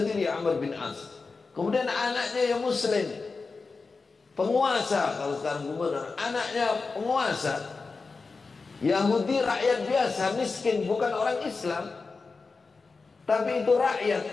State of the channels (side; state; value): right; quieter; 4.3 dB